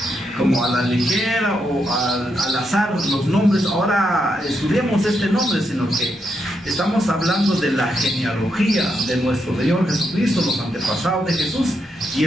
como a la ligera o al azar los nombres. Ahora estudiemos este nombre, sino que estamos hablando de la genealogía de nuestro Señor Jesucristo, los antepasados de Jesús, y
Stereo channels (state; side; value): normal; both; correlation 0.81